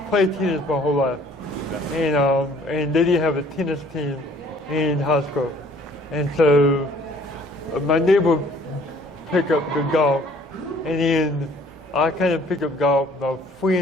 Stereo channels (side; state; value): both; normal; correlation 0.57